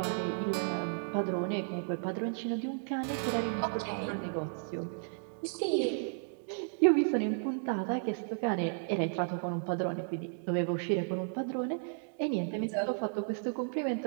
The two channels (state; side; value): silent; left; digital silence